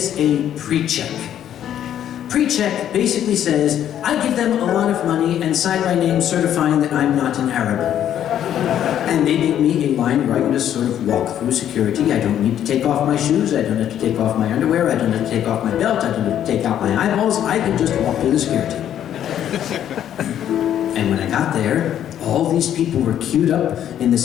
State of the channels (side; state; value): right; quieter; 10.5 dB